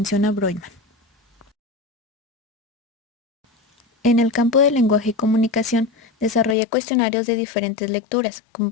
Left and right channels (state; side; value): drops out; right; at 6.6 s